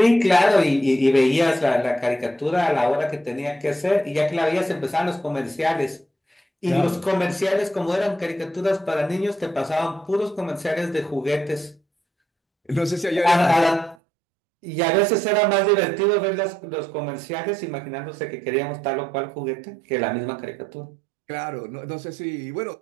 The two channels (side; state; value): left; drops out; at 14.0 s